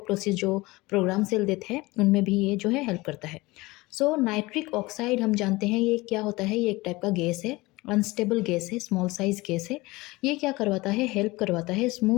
जो प्रोग्राम सेल देते हैं उनमें भी ये जो है हेल्प करता है। सो नाइट्रिक ऑक्साइड हम जानते हैं ये क्या होता है, ये एक टाइप का गैस है, अनस्टेबल गैस है, स्मॉल साइज गैस है। ये क्या करवाता है, हेल्प करवाता है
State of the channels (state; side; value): quieter; right; 21.5 dB